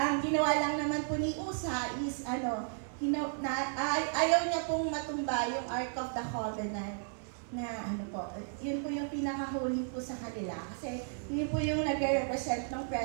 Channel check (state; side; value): silent; left; 55 dB below the other